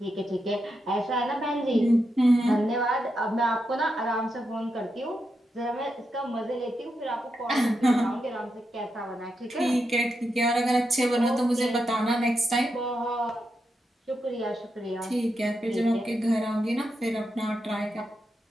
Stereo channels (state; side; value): normal; both; correlation 0.85